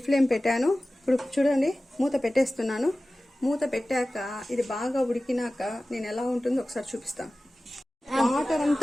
ఫ్లేమ్ పెట్టాను. ఇప్పుడు చూడండి మూత పెట్టేస్తున్నాను. మూత పెట్టాక ఇది బాగా ఉడికినాక నేను ఎలా ఉంటుందో ఒకసారి చూపిస్తాను.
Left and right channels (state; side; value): normal; both; correlation 0.96